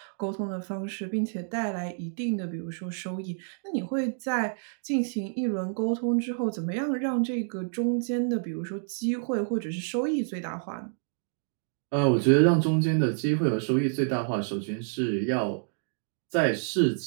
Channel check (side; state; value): left; silent; digital silence